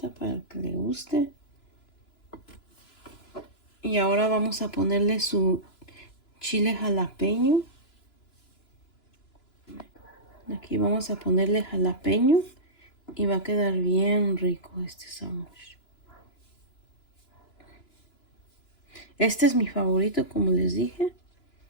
para que le guste. Y ahora vamos a ponerle su chile jalapeño. Aquí vamos a ponerle jalapeño y va a quedar bien rico este sándwich. Este es mi favorito, como les dije,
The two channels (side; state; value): right; late; 2.9 ms